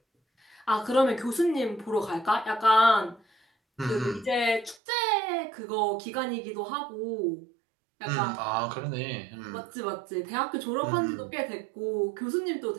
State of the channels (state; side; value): drops out; left; at 4.8 s